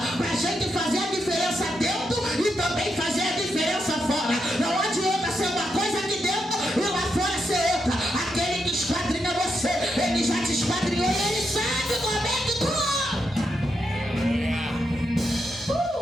para a gente fazer a diferença dentro e também fazer a diferença fora. Não adianta ser uma coisa aqui dentro e lá fora ser outra. Aquele que esquadrinha você, ele já te esquadrinhou e ele sabe como é que tu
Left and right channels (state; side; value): normal; both; correlation 0.83